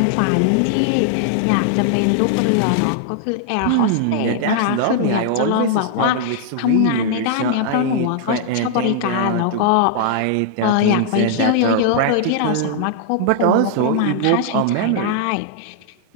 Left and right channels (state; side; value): different; both; correlation -0.01